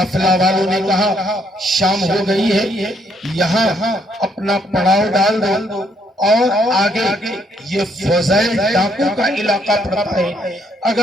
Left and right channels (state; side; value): normal; both; correlation 0.70